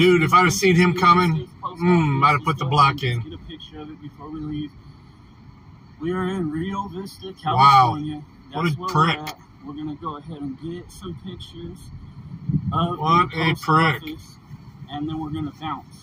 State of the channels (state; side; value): identical; both; correlation 1.00